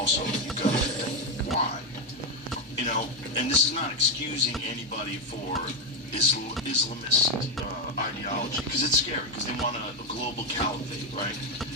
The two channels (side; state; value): both; normal; correlation 0.07